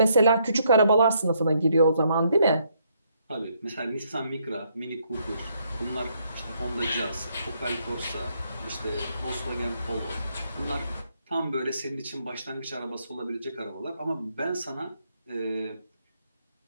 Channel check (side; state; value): both; inverted; correlation -0.73